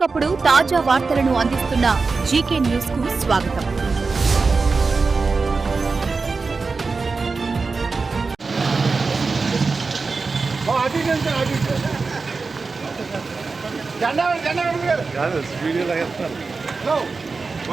తాజా వార్తలను అందిస్తున్న జీకే న్యూస్ కు స్వాగతం.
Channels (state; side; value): quieter; left; 4.3 dB